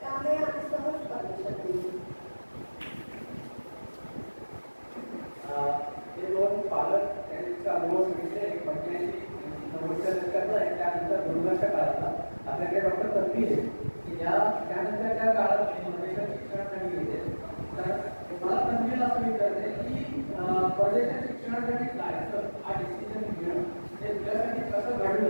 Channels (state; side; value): inverted; both; correlation -1.00